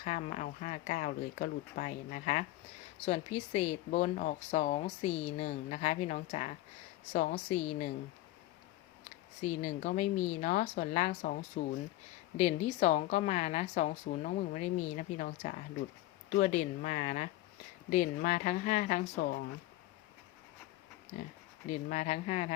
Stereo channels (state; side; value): quieter; right; 16.5 dB